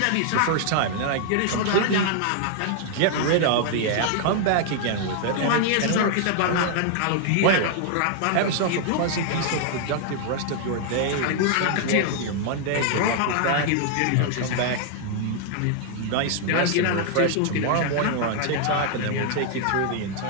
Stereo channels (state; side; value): different; both; correlation 0.00